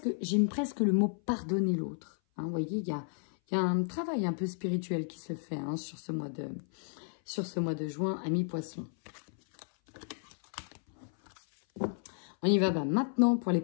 j'aime presque le mot pardonner l'autre. Hein, vous voyez, il y a un travail un peu spirituel qui se fait hein, sur ce mois de juin, amis poissons. On y va maintenant pour les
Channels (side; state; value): right; silent; 56 dB below the other